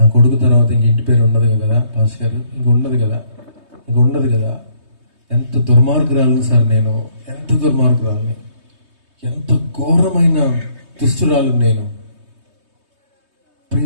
కొడుకు తర్వాత ఇంక ఇంటి పేరు ఉండదు కదా పాస్ గారు, ఇంక ఉండదు కదా. ఎంత దుర్మార్గురాలని సార్ నేను, ఎంత దుర్మార్గురాలని, ఎంత ఘోరమైన దుష్టురాలు నేను. ప్రియ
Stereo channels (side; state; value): left; late; 3.2 ms